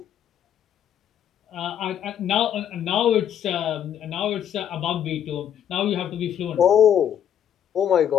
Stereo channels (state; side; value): quieter; right; 9.6 dB